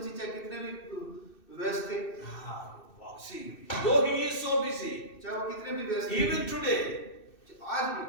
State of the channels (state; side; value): late; right; 2.6 ms